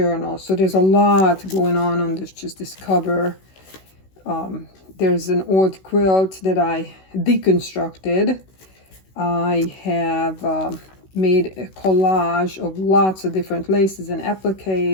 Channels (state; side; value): late; right; 16 ms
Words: So there's a lot going on this cover. There's an old quilt that I deconstructed. I have made a collage of lots of different laces and